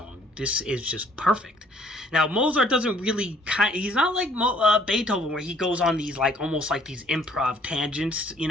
This is just perfect. Now, Mozart doesn't really he's not like Beethoven, where he goes on these like almost like these improv tangents. You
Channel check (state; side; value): normal; both; correlation 0.59